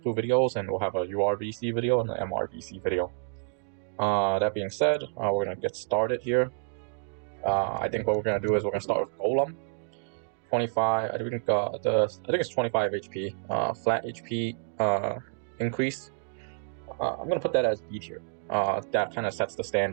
two videos, and we'll have a URVC video and an MRVC video. That being said, we're gonna get started here. I think what we're gonna do is we're gonna start with Golem. 25. I think it's 25 HP. Flat HP increase. I'm gonna put that as B tier. That kind of sets the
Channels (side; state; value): left; silent; digital silence